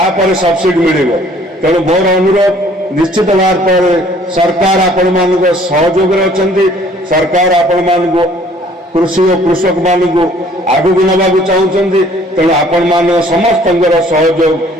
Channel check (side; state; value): both; normal; correlation 0.57